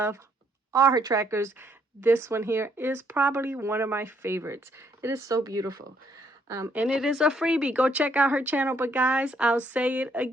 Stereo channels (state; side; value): normal; both; correlation 0.70